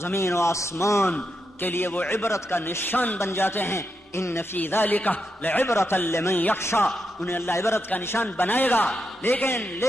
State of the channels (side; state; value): both; normal; correlation 0.84